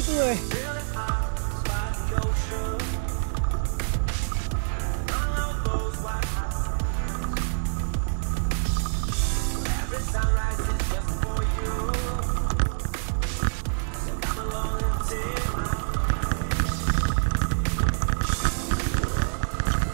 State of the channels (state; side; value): silent; left; digital silence